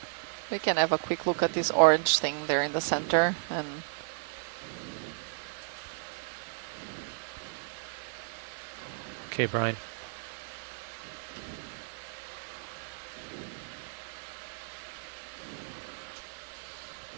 We can have a quick look at this orange thing there in the center. And Okay, Brian.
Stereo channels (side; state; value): left; silent; digital silence